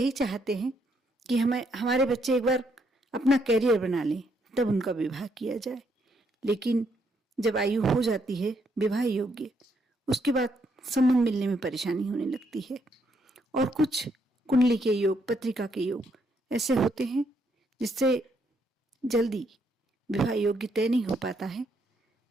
चाहते हैं कि हमारे बच्चे एक बार अपना कैरियर बना लें, तब उनका विवाह किया जाए। लेकिन जब आयु हो जाती है विवाह योग्य, उसके बाद संबंध मिलने में परेशानी होने लगती है। और कुछ कुंडली के योग, पत्रिका के योग ऐसे होते हैं जिससे जल्दी विवाह योग्य तय नहीं हो पाता है।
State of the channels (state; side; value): normal; both; correlation 0.74